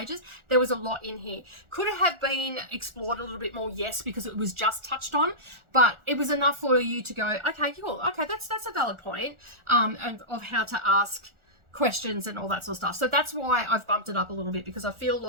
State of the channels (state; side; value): late; left; 1.4 ms